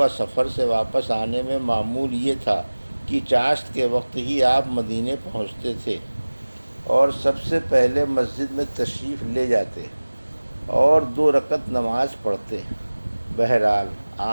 سفر سے واپس آنے میں معمول یہ تھا کہ چاشت کے وقت ہی آپ مدینے پہنچتے تھے اور سب سے پہلے مسجد میں تشریف لے جاتے اور 2 رکعت نماز پڑھتے۔ بہرحال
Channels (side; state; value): both; inverted; correlation -1.00